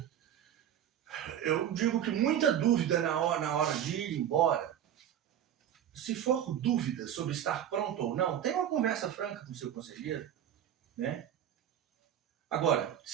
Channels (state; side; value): quieter; left; 10.1 dB